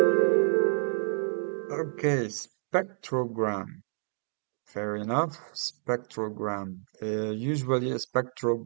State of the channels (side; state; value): left; silent; digital silence